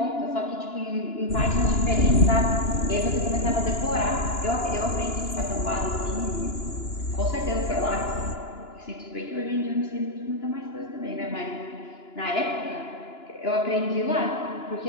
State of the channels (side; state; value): right; late; 2.9 ms